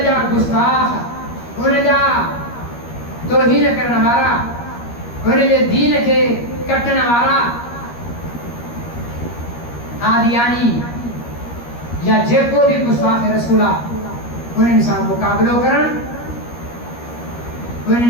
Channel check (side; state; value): right; late; 13 ms